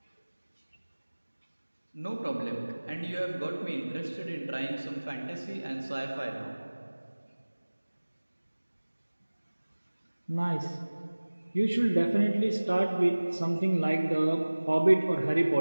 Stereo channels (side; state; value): both; inverted; correlation -1.00